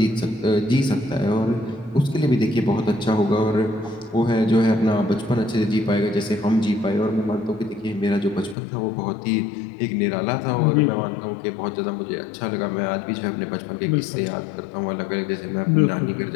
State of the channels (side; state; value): right; drops out; at 8.6 s